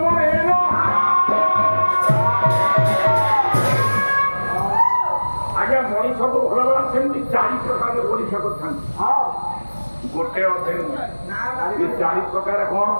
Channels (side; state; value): both; inverted; correlation -1.00